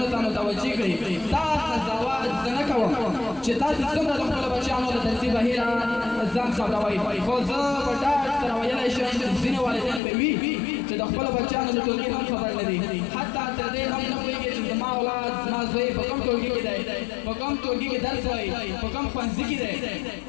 ته متوجه کړي. دا قضاوت زه نه کوم چې تاسې څومره د خپلو بچیانو د درسي بهیره ځان خبروئ، خو زه په ډاډ سره ویلی شم ځینې والدین به وي چې د خپلو بچیانو د ټولګي هم خبر نه دي. حتی تر دې هم نه پوهېږي چې زما اولاد زما زوی په کوم ټولګي کې دی، په کوم ټولګي کې درس وایي، په کوم ښوونځي کې دی.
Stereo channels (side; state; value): right; drops out; at 10.0 s